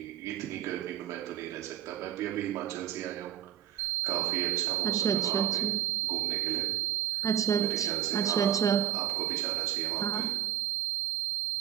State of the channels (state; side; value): quieter; left; 11.1 dB